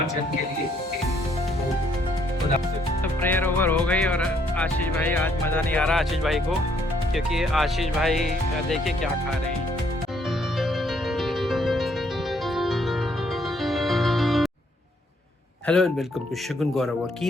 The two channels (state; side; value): normal; both; correlation 0.69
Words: के लिए। तो प्रेयर ओवर हो गई और आशीष भाई, आज मज़ा नहीं आ रहा आशीष भाई को, क्योंकि आशीष भाई देखिए क्या खा रहे हैं। हेलो एंड वेलकम टू शगुन गौरव और